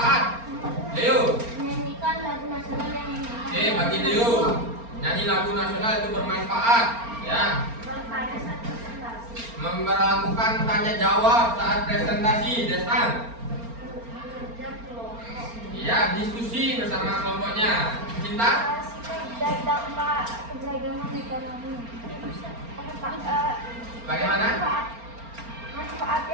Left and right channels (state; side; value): late; left; 4.3 ms